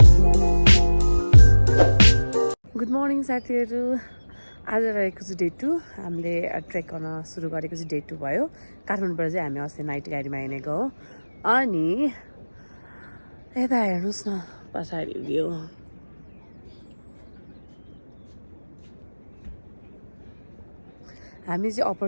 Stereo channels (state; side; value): inverted; both; correlation -1.00